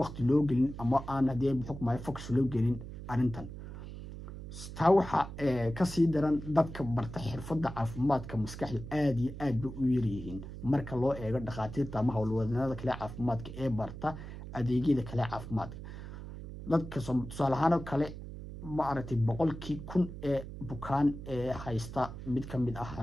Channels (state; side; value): noise; right; hum, 11 dB below the sound